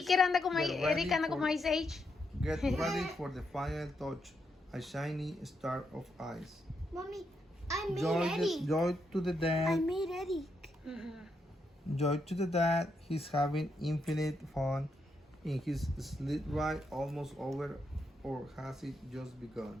allí que anda como Get ready Eric anda como for- Ice Age. Get ready for the final touch, a shiny star of ice. Mommy, I made Joy Eddie. to the I dad. made Eddie. Joy to the dad. He's having infinite fun in his sled ride, almost over, or has it just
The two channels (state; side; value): normal; both; correlation 0.81